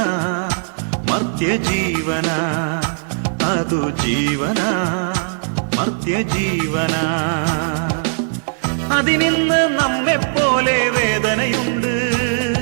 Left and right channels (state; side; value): silent; left; digital silence